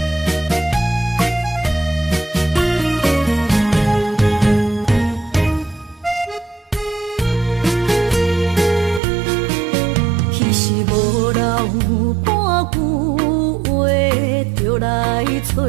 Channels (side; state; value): left; drops out; at 9.0 s